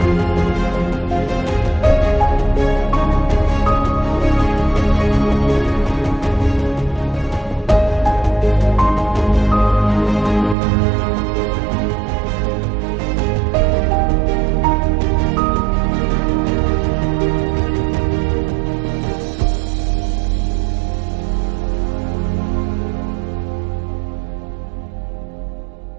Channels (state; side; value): drops out; left; at 10.6 s